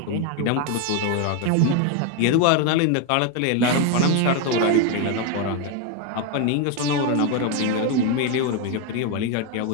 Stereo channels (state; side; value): different; both; correlation 0.02